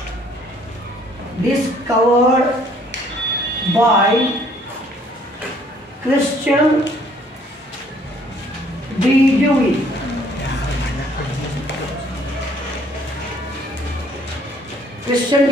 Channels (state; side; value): normal; both; correlation 0.61